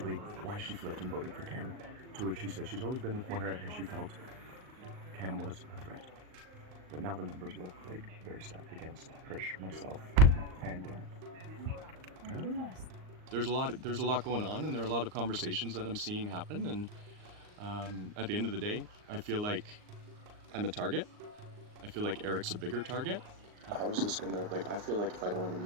why she flipped and voted for Cam, to which she said she's always been with Moira and she felt Cam was a threat. But now the numbers look like very stacked against Krish, myself, and there's a lot going on, and there are a lot of conversations that I'm seeing happen. And at the end of the day, I feel like I'm a target. I feel like Eric's a bigger target. How is this gonna I feel like if I don't win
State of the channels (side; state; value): left; late; 38 ms